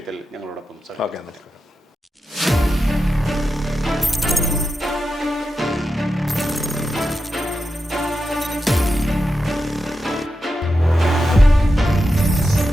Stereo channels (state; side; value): normal; both; correlation 0.89